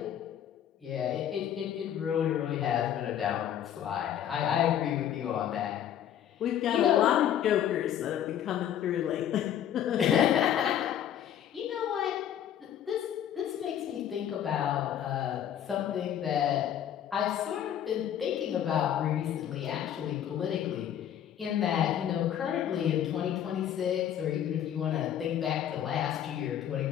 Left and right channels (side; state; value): right; quieter; 10.2 dB